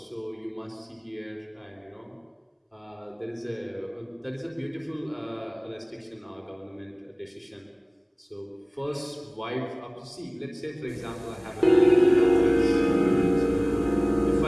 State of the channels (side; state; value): both; identical; correlation 1.00